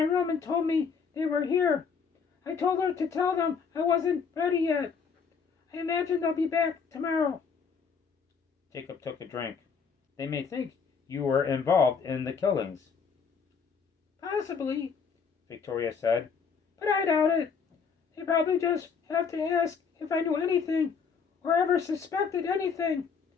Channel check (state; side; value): quieter; right; 5.9 dB